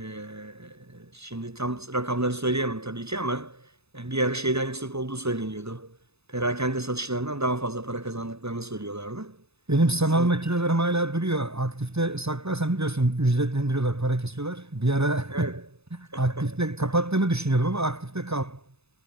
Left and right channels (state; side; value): late; left; 0.79 ms